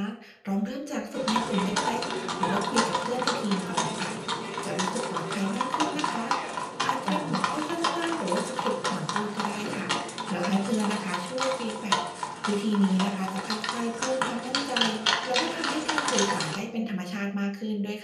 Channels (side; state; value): both; identical; correlation 1.00